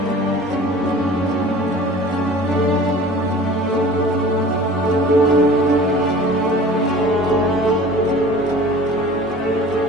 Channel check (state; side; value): normal; both; correlation 0.43